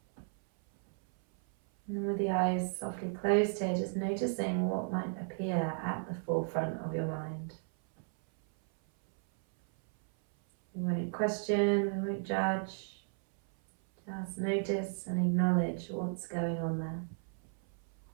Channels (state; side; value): silent; left; 55 dB below the other